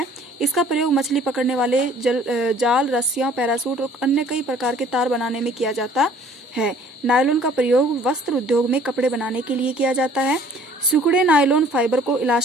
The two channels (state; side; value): normal; both; correlation 0.55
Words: इसका प्रयोग मछली पकड़ने वाले जाल, रस्सियां, पैरासूट और अन्य कई प्रकार के तार बनाने में किया जाता है। नायलॉन का प्रयोग वस्त्र उद्योग में कपड़े बनाने के लिए किया जाता है। सिकुड़े नायलॉन फाइबर को